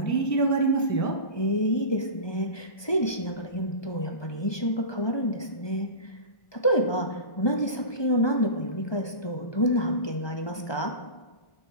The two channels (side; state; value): right; late; 1.2 ms